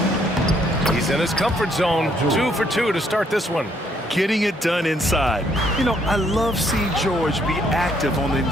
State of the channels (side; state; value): both; normal; correlation 0.69